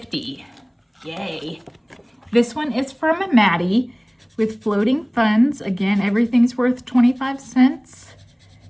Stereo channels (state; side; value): identical; both; correlation 1.00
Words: Yay. This one is from Maddie with floating funds. Again, everything's worth 25 cents.